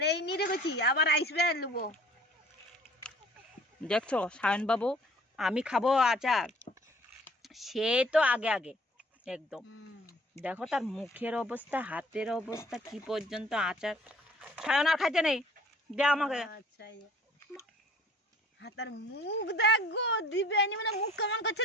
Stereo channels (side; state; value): both; normal; correlation 0.53